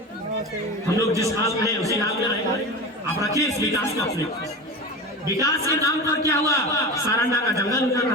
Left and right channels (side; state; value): both; normal; correlation 0.28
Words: हम लोग जिस हाल में हैं उसी हाल में रहेंगे। आप रखिए इस विकास को अपने, विकास के नाम पर क्या हुआ, सारंडा का जंगल उतर